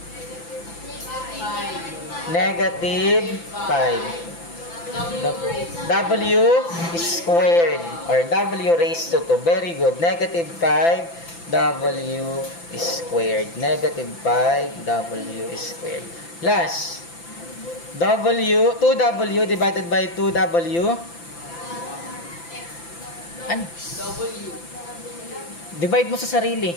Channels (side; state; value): right; late; 5.9 ms